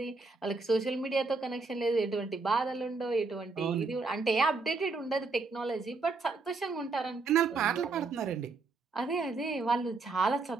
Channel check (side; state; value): left; quieter; 3.9 dB